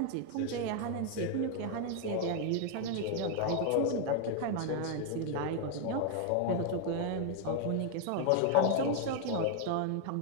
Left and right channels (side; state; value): both; different; correlation 0.00